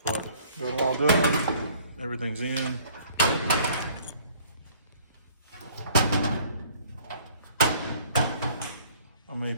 But got it all done, everything's in. I may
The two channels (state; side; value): inverted; both; correlation -0.57